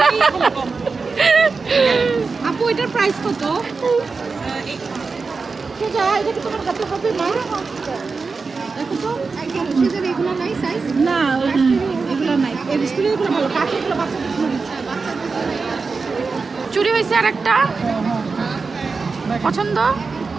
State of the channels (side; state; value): left; quieter; 4.5 dB